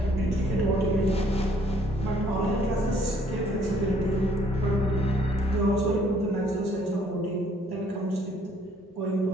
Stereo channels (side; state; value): both; normal; correlation 0.63